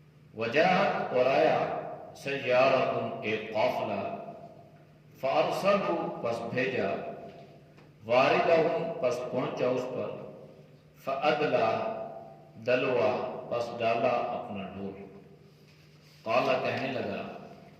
وجاءت اور آیا، سیارۃ ایک قافلہ، فارسلوا پس بھیجا، واردہم پس پہنچا اس پر، فادلا دلوا پس ڈالا اپنا ڈول، قال کہنے لگا،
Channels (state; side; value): identical; both; correlation 1.00